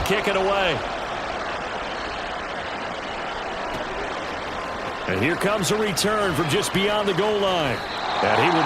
kick it away. And here comes a return from just beyond the goal line. And he will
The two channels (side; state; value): both; identical; correlation 1.00